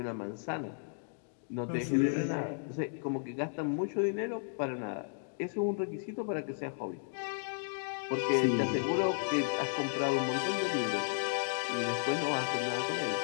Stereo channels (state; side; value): silent; right; digital silence